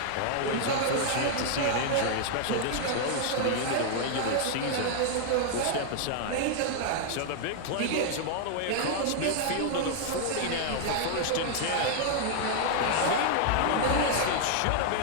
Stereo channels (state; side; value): different; both; correlation 0.00